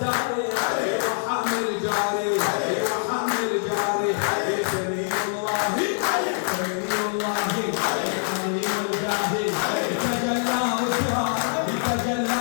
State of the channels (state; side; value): silent; right; 62 dB below the other